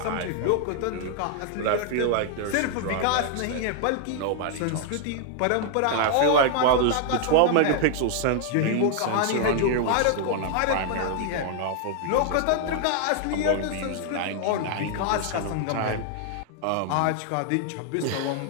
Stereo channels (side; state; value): both; different; correlation 0.00